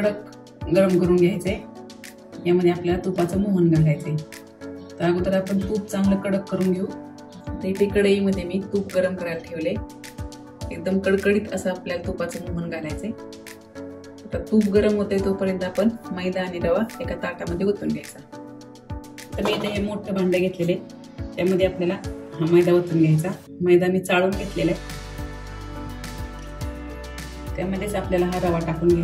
गरम करून घ्यायचंय. यामध्ये आपल्याला तुपाचं मोहन घालायचंय. तर अगोदर आपण तूप चांगलं कडक करून घेऊ. तर इथे कढईमध्ये मी तूप गरम करायला ठेवले. एकदम कडकडीत असं आपल्याला तुपाचं मोहन घालायचंय. तर तूप गरम होते तोपर्यंत आपण मैदा आणि रवा एका ताटामध्ये ओतून घ्यायचा. तर मी इथे हे मोठं भांडं घेतलेले, त्यामध्ये आपल्याला हा मैदा ओतून घ्यायचा. मैदा मी चाळून घेतलेला आहे. त्यामध्येच आपल्याला हा रवा टाकून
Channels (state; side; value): identical; both; correlation 1.00